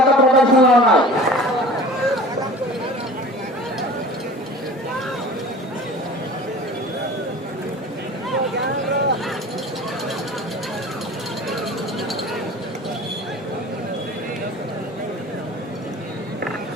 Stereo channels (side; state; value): both; normal; correlation 0.41